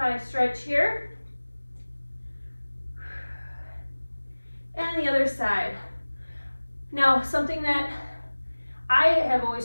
stretch here. And the other side. Now, something that I have always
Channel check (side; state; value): both; inverted; correlation -1.00